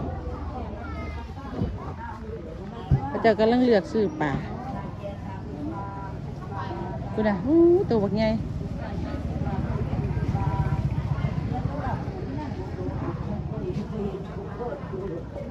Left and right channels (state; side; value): identical; both; correlation 1.00